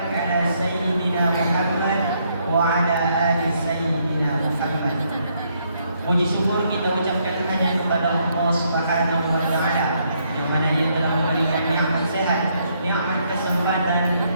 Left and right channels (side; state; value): both; inverted; correlation -0.73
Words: ala sayyidina Muhammad wa ala ali sayyidina Muhammad. Puji syukur kita ucapkan hanya kepada Allah Subhanahu wa taala yang mana Ia telah memberikan nikmat sehat, nikmat